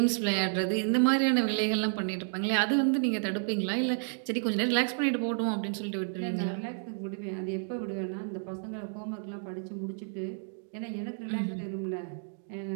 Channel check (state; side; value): silent; left; digital silence